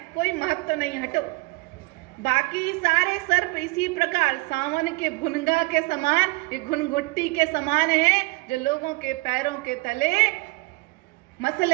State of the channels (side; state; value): left; quieter; 25.3 dB